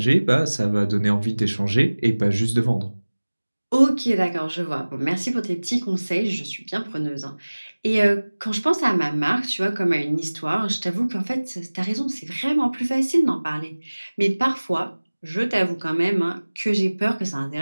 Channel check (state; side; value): inverted; both; correlation -1.00